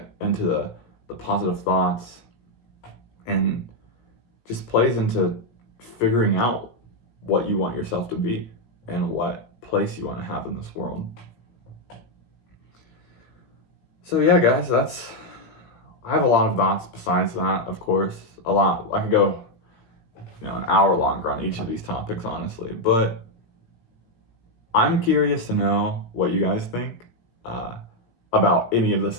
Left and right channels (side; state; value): right; late; 17 ms